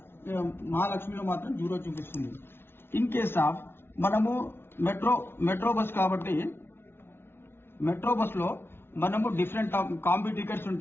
మహాలక్ష్మిలో మాత్రం 0 చూపిస్తుంది. ఇన్ కేస్ ఆఫ్ మనము మెట్రో బస్ కాబట్టి మెట్రో బస్ లో మనము డిఫరెంట్ కాంబీ టికెట్స్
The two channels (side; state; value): right; late; 0.11 ms